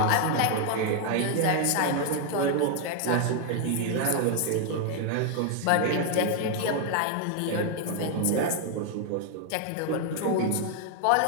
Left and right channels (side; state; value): both; different; correlation 0.00